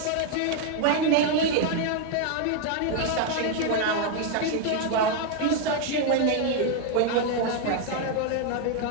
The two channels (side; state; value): both; different; correlation 0.01